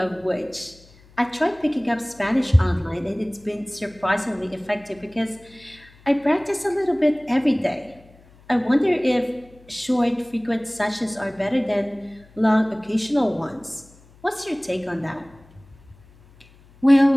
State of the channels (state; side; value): noise; left; hum, 26 dB below the sound